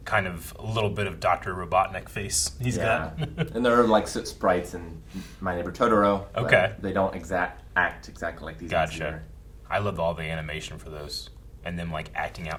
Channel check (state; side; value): identical; both; correlation 1.00